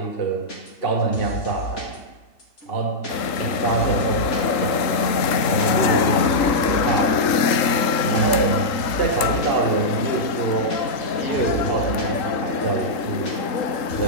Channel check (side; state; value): right; late; 3.7 ms